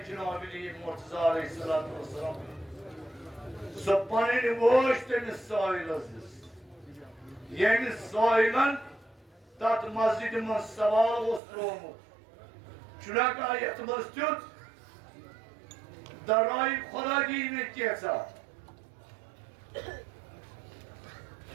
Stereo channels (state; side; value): drops out; left; at 11.4 s